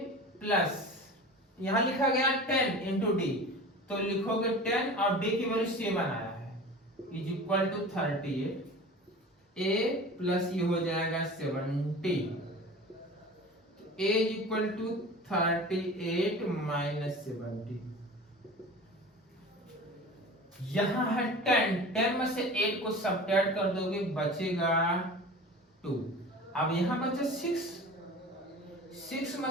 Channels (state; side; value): normal; both; correlation 0.37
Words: plus यहां लिखा गया 10 इंटू D, तो लिखोगे 10 और D की वैल्यू 7 आया है is equal to 38, A plus ये हो जाएगा 70, तो A is equal to 38 minus 70, यहां है 10 में से 8 को सब्ट्रैक्ट कर दोगे बचेगा 2, अब यहां बचा 6 में